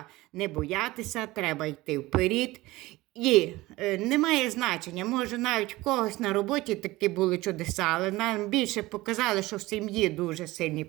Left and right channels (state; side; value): quieter; left; 19.2 dB